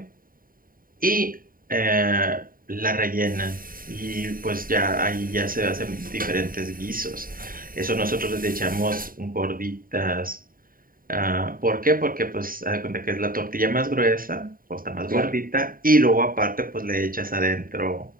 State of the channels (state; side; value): late; left; 0.41 ms